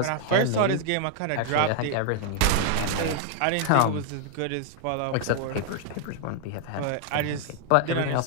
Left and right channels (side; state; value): both; different; correlation 0.00